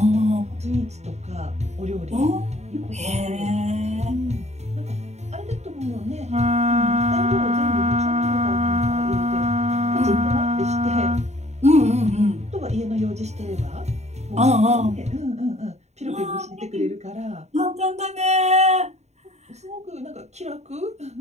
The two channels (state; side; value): late; left; 0.32 ms